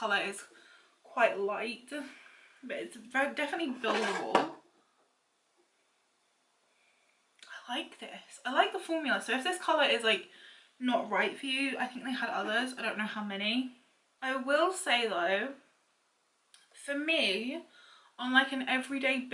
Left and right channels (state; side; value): identical; both; correlation 1.00